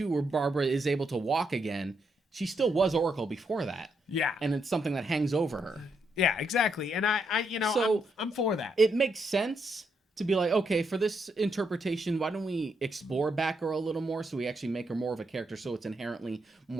where Barbara is able to walk again, she still was Oracle before that. Yeah. And it's something that hangs over her. Yeah, exactly. And I'm for that. It makes sense to be okay, for this interpretation, why don't we explore Batgirl a little more so we actually make her more of a character so it's inherently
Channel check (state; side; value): normal; both; correlation 0.79